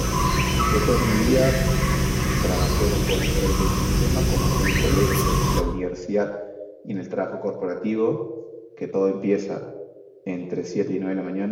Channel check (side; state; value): both; identical; correlation 1.00